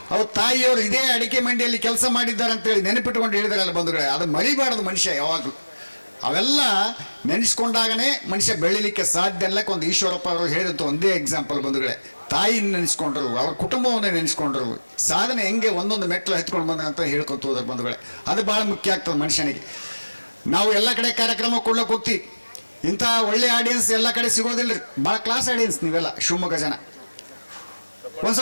ಅವ್ರ ತಾಯಿಯವರು ಇದೇ ಅಡಿಕೆ ಮಂಡಿಯಲ್ಲಿ ಕೆಲಸ ಮಾಡಿದ್ದಾರೆ ಅಂತೇಳಿ ನೆನಪಿಟ್ಕೊಂಡು ಹೇಳಿದಾರಲ್ಲ ಬಂಧುಗಳೇ. ಅದು ಮರಿಬಾರದು ಮನುಷ್ಯ ಯಾವಾಗಲೂ. ಅವೆಲ್ಲ ನೆನೆಸ್ಕೊಂಡಾಗನೇ ಮನುಷ್ಯ ಬೆಳಿಲಿಕ್ಕೆ ಸಾಧ್ಯ. ಎಲ್ಲಕ್ಕೆ ಒಂದು ಈಶ್ವರಪ್ಪ ಅವರು ಹೇಳಿದಂಥ ಒಂದೇ ಎಕ್ಸಾಂಪಲ್ ಬಂಧುಗಳೇ. ತಾಯಿನ ನೆನೆಸ್ಕೊಂಡ್ರು, ಅವ್ರ ಕುಟುಂಬವನ್ನ ನೆನೆಸ್ಕೊಂಡ್ರು, ಸಾಧನೆ ಹೆಂಗೆ ಒಂದೊಂದು ಮೆಟ್ಲು ಹತ್ಕೊಂಡು ಬಂದ ಅಂತ ಹೇಳ್ಕೊತ ಹೋದ್ರ ಬಂಧುಗಳೇ. ಅದು ಭಾಳ ಮುಖ್ಯ ಆಗ್ತದೆ ಮನುಷ್ಯನಿಗೆ. ನಾವು ಎಲ್ಲ ಕಡೆ ಕಾರ್ಯಕ್ರಮ ಕೊಡ್ಲಿಕ್ಕೆ ಹೋಗ್ತೀವಿ, ಇಂಥ ಒಳ್ಳೆ ಆಡಿಯನ್ಸ್ ಎಲ್ಲ ಕಡೆ ಸಿಗೋದಿಲ್ಲ ರೀ. ಭಾಳ ಕ್ಲಾಸ್ ಆಡಿಯನ್ಸ್ ನೀವೆಲ್ಲ ಶಿವಮೊಗ್ಗ ಜನ.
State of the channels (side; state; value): both; inverted; correlation -1.00